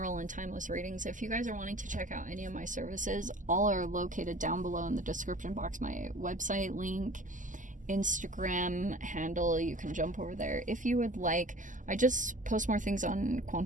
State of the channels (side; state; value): left; late; 0.37 ms